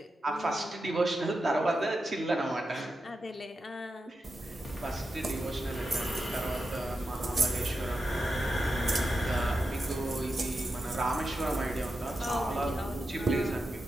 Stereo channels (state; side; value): normal; both; correlation 0.89